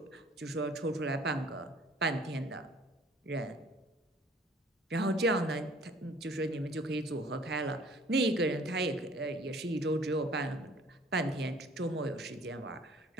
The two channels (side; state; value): both; normal; correlation 0.54